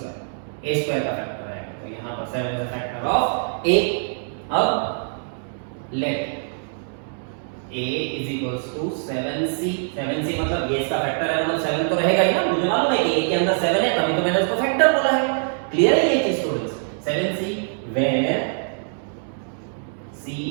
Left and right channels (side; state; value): left; silent; digital silence